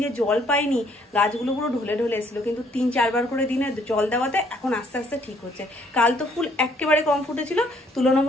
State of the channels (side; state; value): both; normal; correlation 0.65